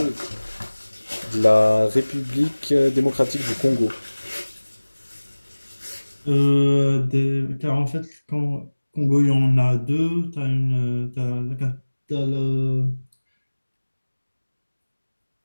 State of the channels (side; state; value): both; inverted; correlation -1.00